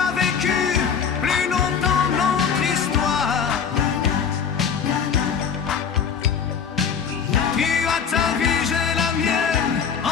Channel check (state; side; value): quieter; right; 6.9 dB